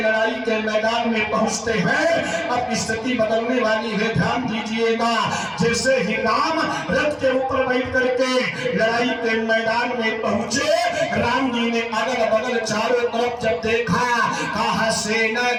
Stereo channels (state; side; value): identical; both; correlation 1.00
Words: लड़ाई के मैदान में पहुंचते हैं, अब स्थिति बदलने वाली है। ध्यान दीजिएगा, जैसे ही राम रथ के ऊपर बैठ करके लड़ाई के मैदान में पहुंचे, राम जी ने अगल बगल चारों तरफ जब देखा, कहा सेना